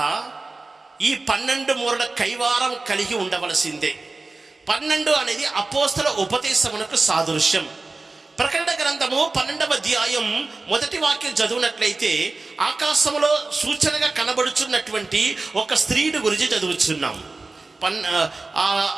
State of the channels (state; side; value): quieter; left; 3.5 dB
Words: ఈ 12 మూరల కైవారం కలిగి ఉండవలసిందే. 12 అనేది అపోస్తల ఉపదేశమునకు సాదృశ్యం. ప్రకటన గ్రంథము 12వ అధ్యాయం మొదటి వాక్యం చదివినట్లయితే ఆకాశములో సూచనగా కనబడుచున్నటువంటి ఒక స్త్రీని గురించి చదువుచున్నాం.